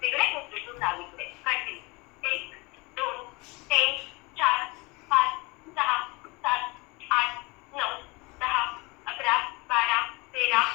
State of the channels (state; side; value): quieter; right; 25.8 dB